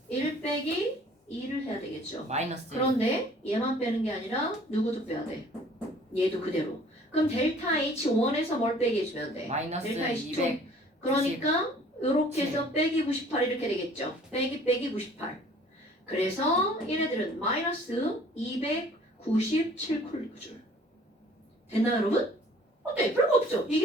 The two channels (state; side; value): normal; both; correlation 0.53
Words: 1 빼기 2를 해야 되겠죠. 마이너스. 그런데 얘만 빼는 게 아니라 누구도 빼야 돼. 얘도 그대로. 그럼 델타 H1에서 뭘 빼게 해주면 돼? 마이너스 델타 H2. 200. 그러니까 이렇게 해서 빼기 98 이렇게 되겠죠. 빼기 98. 그래서 얘네들은 마이너스 297쿨리줄. 됐나요, 여러분? 어때? 별거 없죠?